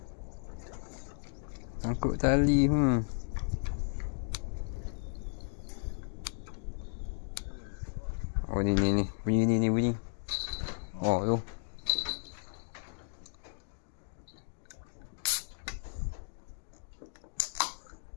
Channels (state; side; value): silent; right; digital silence